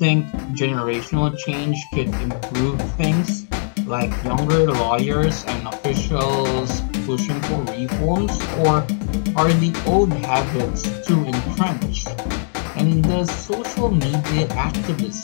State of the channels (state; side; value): silent; right; digital silence